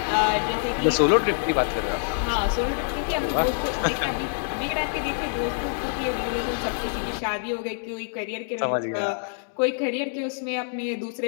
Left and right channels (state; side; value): silent; right; digital silence